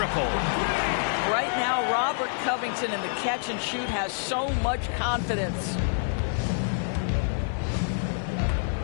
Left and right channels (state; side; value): silent; right; digital silence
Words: Right now, Robert Covington in the catch and shoot has so much confidence.